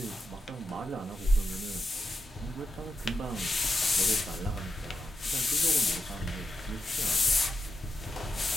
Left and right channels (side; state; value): both; normal; correlation 0.87